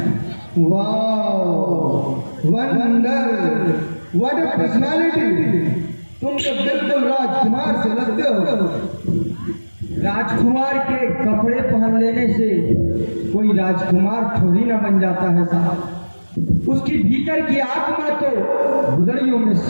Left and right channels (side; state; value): both; inverted; correlation -1.00